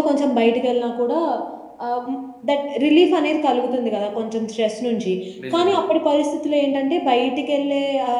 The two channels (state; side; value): identical; both; correlation 1.00